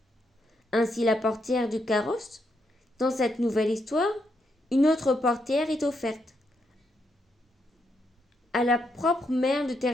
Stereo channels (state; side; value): normal; both; correlation 0.79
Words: Ainsi, la portière du carrosse. Dans cette nouvelle histoire, une autre portière est offerte à la propre mère de